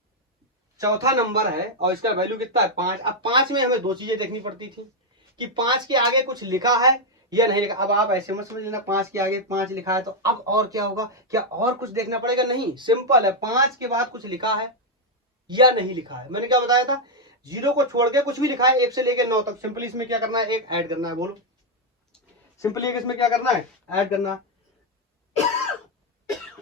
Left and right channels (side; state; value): both; normal; correlation 0.00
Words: चौथा नंबर है और इसका वैल्यू कितना है 5। अब 5 में हमें दो चीजें देखनी पड़ती थी कि 5 के आगे कुछ लिखा है या नहीं लिखा। अब आप ऐसे मत समझ लेना 5 के आगे 5 लिखा है तो अब और क्या होगा, क्या और कुछ देखना पड़ेगा, नहीं, सिंपल है, 5 के बाद कुछ लिखा है या नहीं लिखा है। मैंने क्या बताया था, 0 को छोड़ के कुछ भी लिखा है 1 से लेकर 9 तक, सिंपली इसमें क्या करना है, एक ऐड करना है। बोलो सिंपली एक इसमें क्या करना है, ऐड करना है।